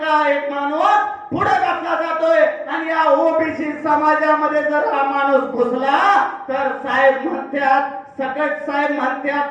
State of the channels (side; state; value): both; identical; correlation 1.00